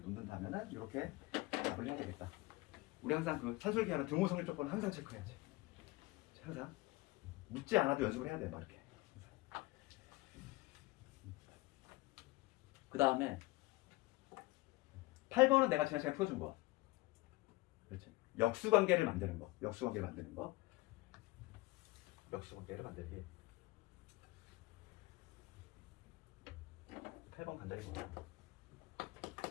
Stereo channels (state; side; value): quieter; right; 21.3 dB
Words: 이렇게 답을 해야 되겠다. 우리 항상 그 산술기하는 등호 성립 조건은 항상 체크해야지. 항상 묻지 않아도 연습을 해야 돼, 막 이렇게. 그 다음에 8번은 내가 지난 시간에 풀어준 거야. 그렇지? 역수관계를 만드는 거. 역수관계를 만드는 거. 역수관계를 만들기. 8번 간단히 보자.